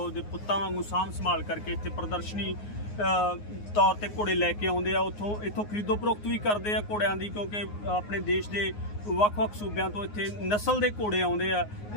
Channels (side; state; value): right; late; 9.6 ms